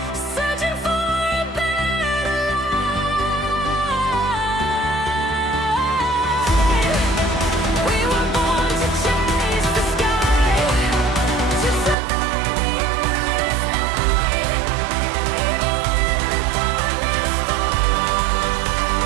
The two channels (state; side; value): drops out; left; at 12.0 s